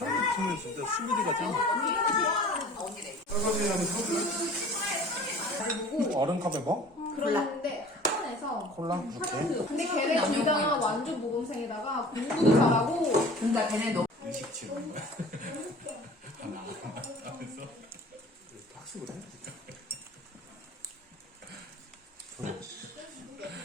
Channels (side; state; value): both; normal; correlation 0.45